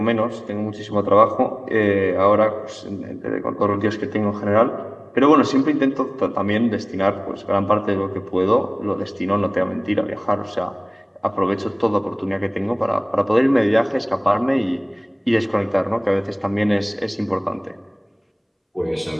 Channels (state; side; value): identical; both; correlation 1.00